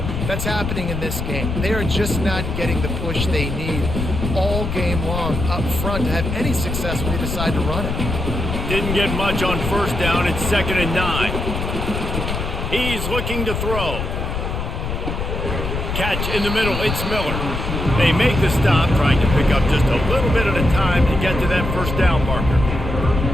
That's happening in this game. They are just not getting the push they need all game long up front to have any success when they decide to run it. Didn't get much on 1st down. It's 2nd and 9. He's looking to throw. Catch in the middle. It's Miller. They make the stop, trying to pick up just a little bit at a time to get to that 1st down marker.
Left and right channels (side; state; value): left; noise; rumble, 3 dB below the sound